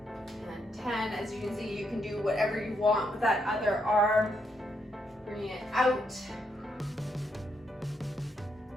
and 10. As you can see, you can do whatever you want with that other arm. Bring it out.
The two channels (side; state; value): both; normal; correlation 0.78